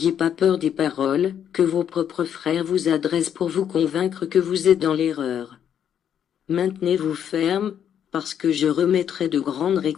pas peur des paroles que vos propres frères vous adressent pour vous convaincre que vous êtes dans l'erreur. Maintenez-vous ferme, parce que je remettrai de grandes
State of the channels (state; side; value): quieter; right; 9.1 dB